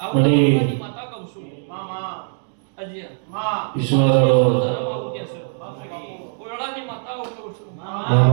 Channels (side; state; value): left; silent; digital silence